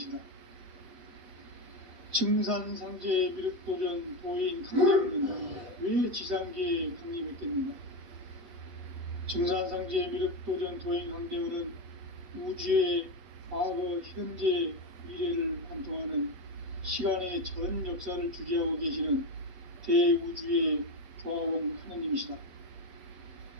증산상제 미륵도전 도인 강대훈은 왜 지상계에 강림했겠는가? 증산상제 미륵도전 도인 강대훈은 우주의 과거, 현재, 미래를 관통하는 시간의 전 역사를 주재하고 계시는 대우주의 조화원 하느님이시다.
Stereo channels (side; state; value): left; late; 8.1 ms